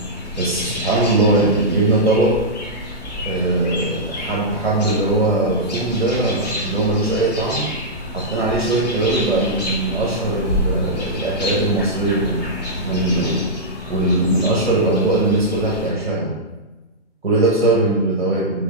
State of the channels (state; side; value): normal; both; correlation -0.11